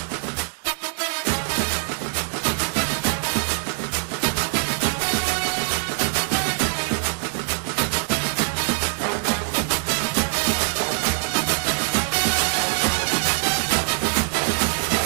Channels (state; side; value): silent; left; 60 dB below the other